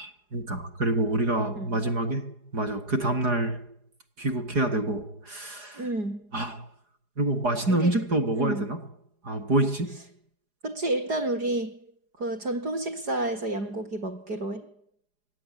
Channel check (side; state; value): left; late; 4.8 ms